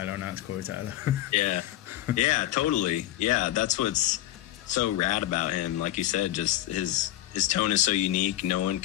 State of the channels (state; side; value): quieter; right; 14.4 dB